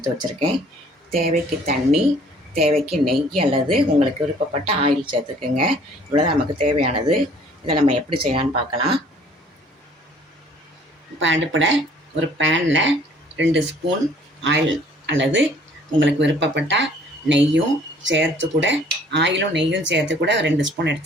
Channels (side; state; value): both; normal; correlation 0.56